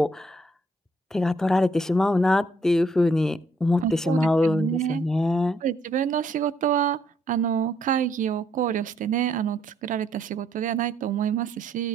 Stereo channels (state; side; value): normal; both; correlation 0.69